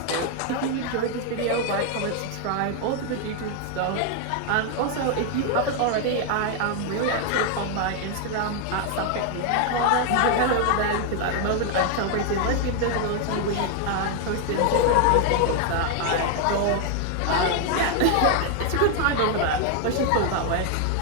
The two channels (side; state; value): both; different; correlation 0.00